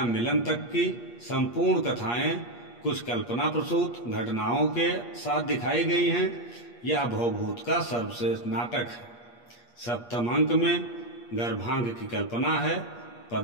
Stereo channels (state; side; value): late; right; 8.4 ms